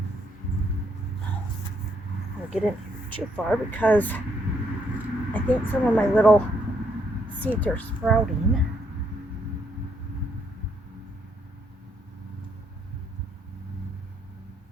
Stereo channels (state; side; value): normal; both; correlation 0.73